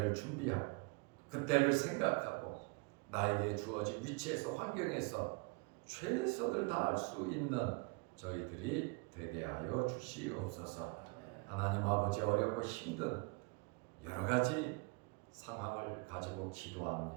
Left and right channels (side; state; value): left; quieter; 29.2 dB